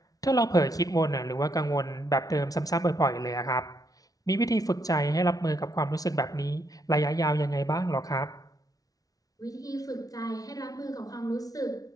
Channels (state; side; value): late; right; 0.18 ms